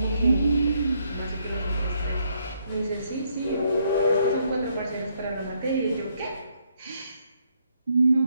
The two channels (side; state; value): both; inverted; correlation -0.73